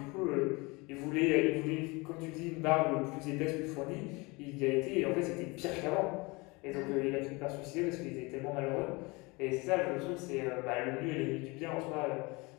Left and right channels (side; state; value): right; quieter; 25.6 dB